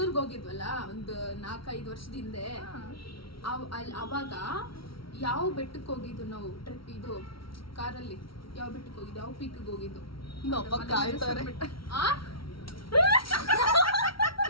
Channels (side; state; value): right; late; 0.74 ms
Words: ಹೋಗಿದ್ವಲ್ಲ ಒಂದು 4-5 ವರ್ಷದ ಹಿಂದೆ. ಅವಾಗ ಯಾವ ಬೆಟ್ಟಕ್ಕೆ ಹೋಗಿದ್ದು ನಾವು? ಟ್ರಿಪ್ ಇದು ಕಾರಲ್ಲಿ ಯಾವ ಬೆಟ್ಟಕ್ಕೆ ಹೋಗಿದ್ದು? ಯಾವ ಪೀಕ್ಗೆ ಹೋಗಿದ್ದು? ನಮ್ಮಪ್ಪ ಕಾಯ್ತಾರೆ.